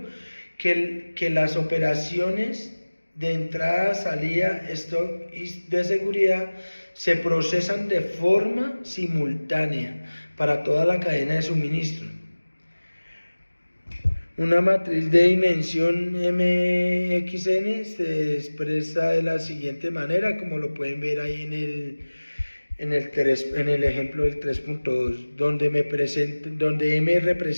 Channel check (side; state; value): both; inverted; correlation -1.00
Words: que las operaciones de entrada, salida, stock y de seguridad se procesan de forma simultánea para toda la cadena de suministro. Una matriz de dimensión MXN se expresa de la siguiente manera, como lo pueden ver ahí en el ejemplo del 3.2, donde M